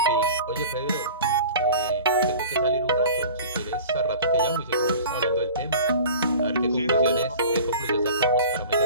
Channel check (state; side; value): inverted; both; correlation -0.40